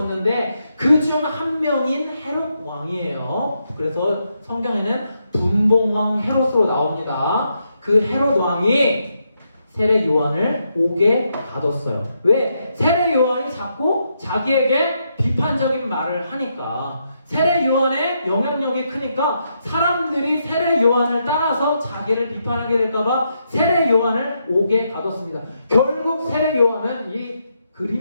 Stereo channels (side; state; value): both; inverted; correlation -0.80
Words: 그 중 한 명인 헤롯 왕이에요. 그래서 성경에는 분봉왕 헤롯으로 나옵니다. 그 헤롯 왕이 세례 요한을 옥에 가뒀어요. 왜? 세례 요한이 자꾸 자기에게 비판적인 말을 하니까, 세례 요한의 영향력이 크니까 사람들이 세례 요한을 따라서 자기를 비판하게 될까봐 세례 요한을 옥에 가뒀습니다. 결국 세례 요한은 이